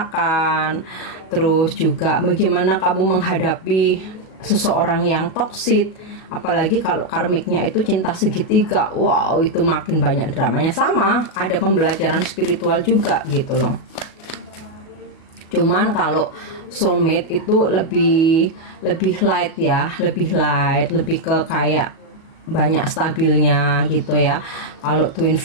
Terus juga bagaimana kamu menghadapi seseorang yang toksik, apalagi kalau karmiknya itu cinta segitiga. Wow, itu makin banyak dramanya. Sama, ada pembelajaran spiritual juga gitu loh. Cuman kalau soulmate itu lebih light ya, lebih ke kayak banyak stabilnya gitu ya. Kalau twin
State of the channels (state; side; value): late; right; 37 ms